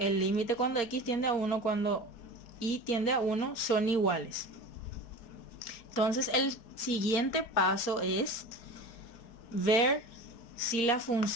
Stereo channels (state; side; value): late; right; 4.4 ms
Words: límite cuando x tiende a 1 cuando y tiende a 1 son iguales. Entonces el siguiente paso es ver si la